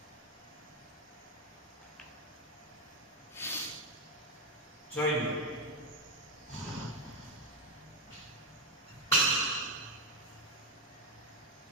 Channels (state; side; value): normal; both; correlation 0.07